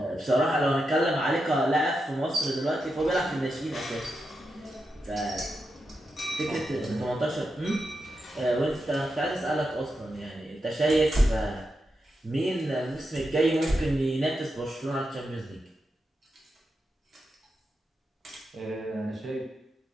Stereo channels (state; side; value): normal; both; correlation 0.87